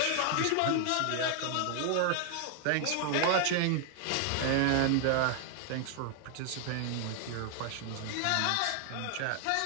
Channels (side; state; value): both; different; correlation 0.00